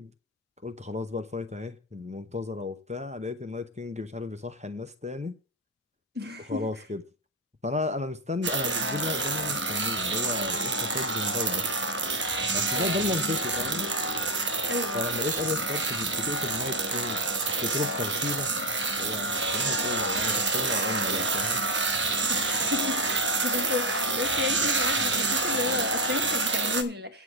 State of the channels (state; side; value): normal; both; correlation 0.08